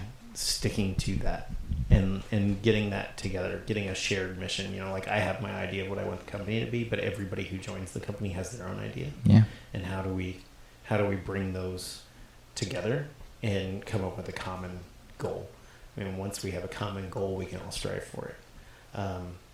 sticking to that. And getting that together, getting a shared mission. Like I have my idea of what I want the company to be, but everybody who joins the company has their own idea. Yeah. And how do we bring those together and come up with a common goal? I mean, once we have a common goal, we can all strive for it.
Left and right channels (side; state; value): both; identical; correlation 1.00